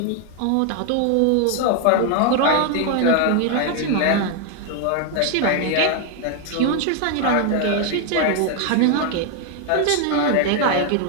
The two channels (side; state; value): both; different; correlation 0.01